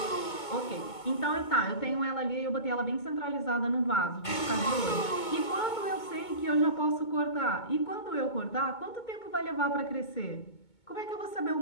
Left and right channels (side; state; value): right; late; 2.2 ms